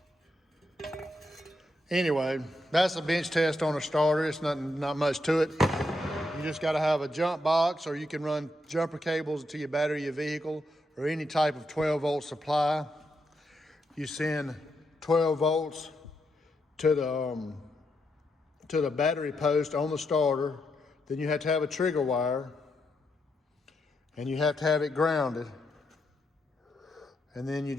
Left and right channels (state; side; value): normal; both; correlation 0.81